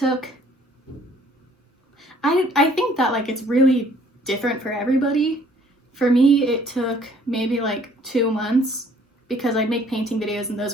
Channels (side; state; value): both; normal; correlation 0.59